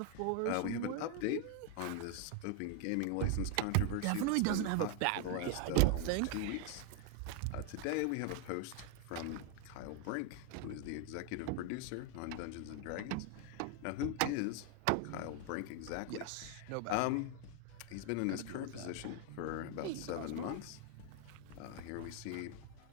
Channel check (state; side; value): different; both; correlation 0.01